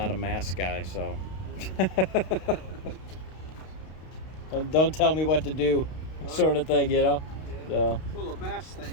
a mask guy, so. Don't tell me what to do, sort of thing, So. Well, the mask thing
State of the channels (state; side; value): late; right; 32 ms